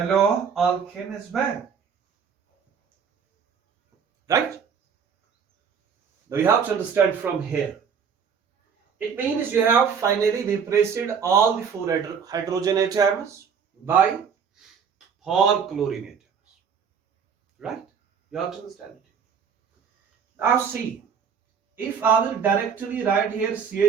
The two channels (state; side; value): quieter; left; 6.7 dB